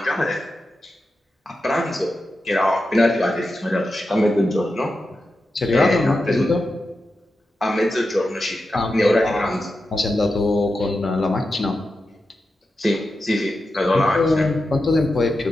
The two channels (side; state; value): both; normal; correlation 0.90